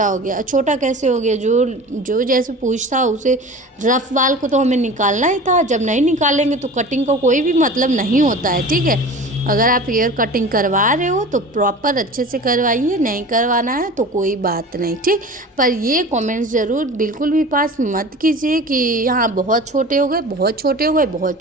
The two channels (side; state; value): both; normal; correlation 0.37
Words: हो गया। छोटा कैसे हो गया, जो जैसे पूछ था उसे रफ वाल को तो हमें निकालना ही था, जब नहीं निकालेंगे तो कटिंग का कोई भी मतलब नहीं होता है, ठीक है। अगर आप हेयर कटिंग करवा रहे हो तो प्रॉपर अच्छे से करवाइए, नहीं करवाना है तो कोई बात नहीं, ठीक। पर ये कमेंट्स ज़रूर बिल्कुल भी पास मत कीजिए कि यहाँ बहुत छोटे हो गए, बहुत छोटे हो गए, बहुत